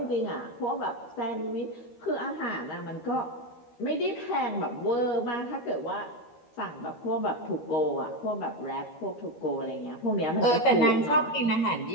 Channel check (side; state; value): right; late; 13 ms